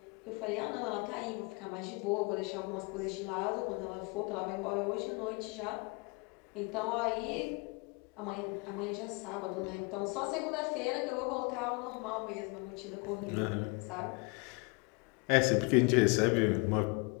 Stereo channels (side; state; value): right; quieter; 30.3 dB